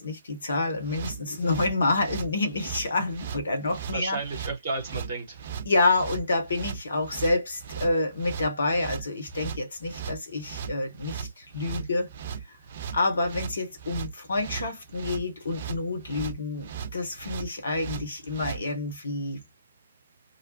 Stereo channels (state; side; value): inverted; both; correlation -0.72